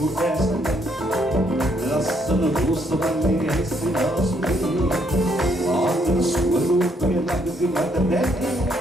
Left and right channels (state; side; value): normal; both; correlation 0.71